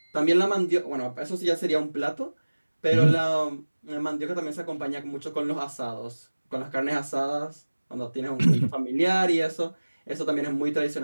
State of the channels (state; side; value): inverted; both; correlation -1.00